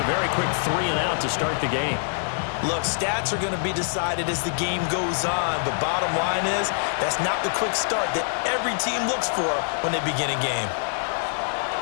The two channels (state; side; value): silent; right; 62 dB below the other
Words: a very quick 3 and out to start the game. Look, stats are going to be decided as the game goes on, but bottom line is that's not the quick start that every team looks for when they begin a game.